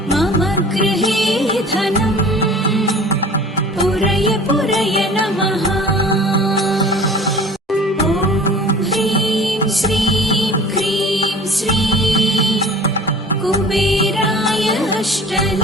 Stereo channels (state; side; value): normal; both; correlation 0.44